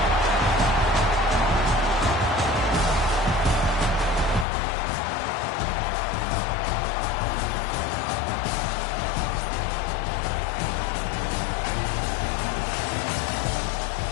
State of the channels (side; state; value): right; drops out; at 4.5 s